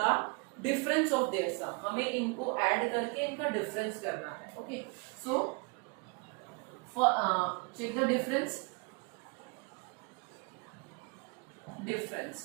difference of their sum. हमें इनको add करके इनका difference करना है. Okay. So for check the difference.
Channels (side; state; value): left; quieter; 30.3 dB